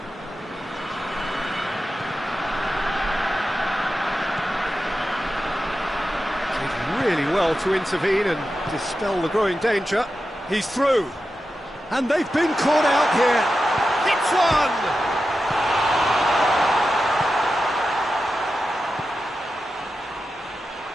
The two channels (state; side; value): normal; both; correlation 0.91